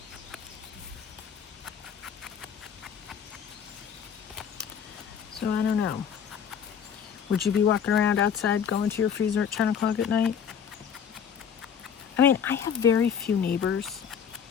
So I don't know. Would you be walking around outside going to your freezer at 10 o'clock at night? I mean, I have very few neighbors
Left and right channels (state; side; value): quieter; right; 7.6 dB